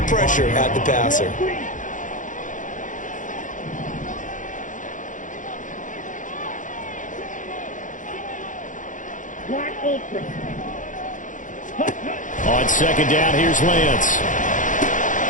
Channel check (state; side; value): late; right; 0.37 ms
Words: pressure at the passer. On second down, here's Lance.